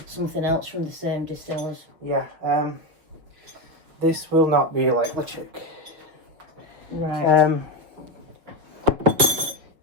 something else from the same distillers. Yeah. This will not be like LeChick. Right.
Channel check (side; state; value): left; late; 6.4 ms